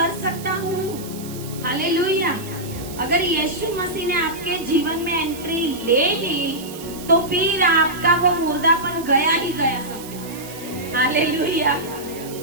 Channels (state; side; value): noise; right; hiss, 15 dB below the sound